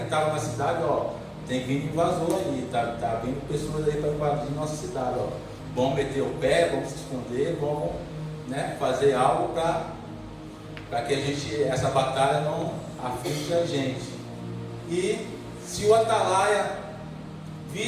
estava na cidade, ó, tem vindo invasor aí, tá vindo pessoas aí para invadir nossa cidade, ó. Vamos meter o pé, vamos se esconder, vamos, né, fazer algo para que essa batalha não aflige a gente. E se o atalaia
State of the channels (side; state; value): both; identical; correlation 1.00